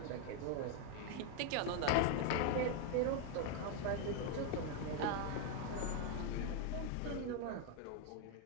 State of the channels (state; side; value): different; both; correlation 0.01